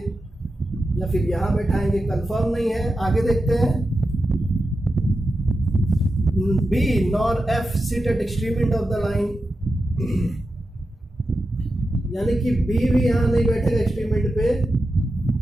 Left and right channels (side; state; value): both; normal; correlation 0.90